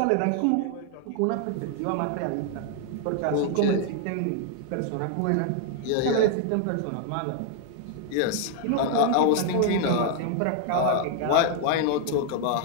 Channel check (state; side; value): different; both; correlation 0.00